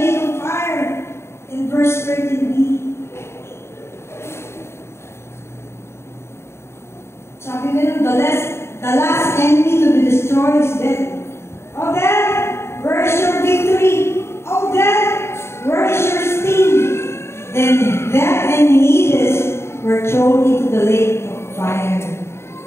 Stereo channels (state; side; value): late; right; 0.13 ms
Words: Sabi nila, the last enemy to be destroyed is death. Oh, death, where is your victory? Oh, death, where is your sting? Then death and Hades were thrown into the lake of fire.